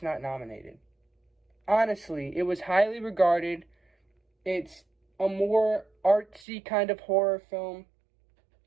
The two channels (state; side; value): drops out; left; at 6.5 s